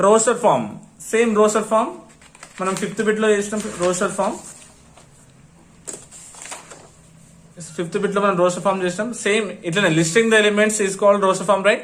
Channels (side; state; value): both; identical; correlation 1.00